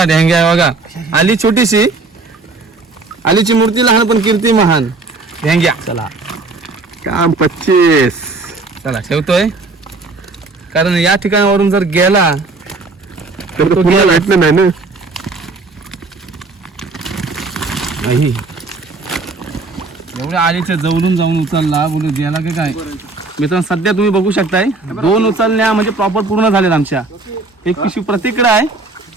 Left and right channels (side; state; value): left; quieter; 3.6 dB